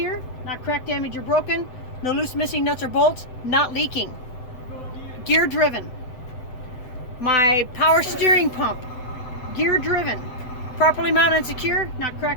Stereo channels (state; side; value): late; right; 7.9 ms